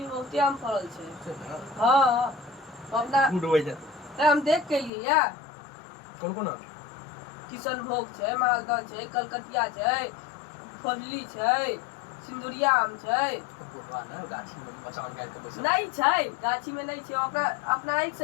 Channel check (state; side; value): drops out; right; at 4.9 s